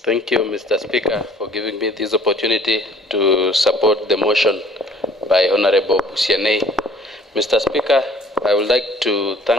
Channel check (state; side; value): normal; both; correlation 0.54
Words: Thank you, Mr. Speaker, for giving me this opportunity to support the motion by Honorable Busianei. Mr. Speaker, I would like to